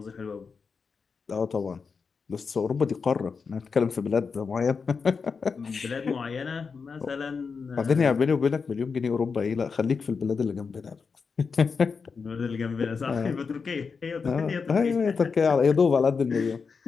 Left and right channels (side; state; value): right; quieter; 5.3 dB